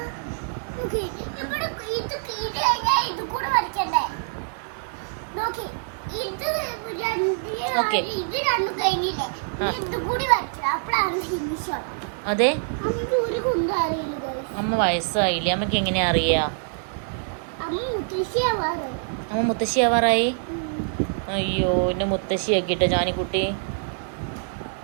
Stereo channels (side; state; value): left; silent; digital silence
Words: ഓക്കെ അതെ അമ്മ വയസ്സായില്ലേ? അമ്മക്ക് എങ്ങനെയാ അറിയാ? അമ്മ മുത്തശ്ശി ആവാറായി. അയ്യോ എന്നെ മുത്തശ്ശി ആക്കിട്ടോ ജാനിക്കുട്ടി.